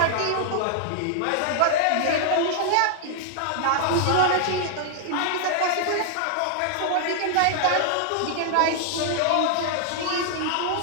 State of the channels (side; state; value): both; different; correlation 0.00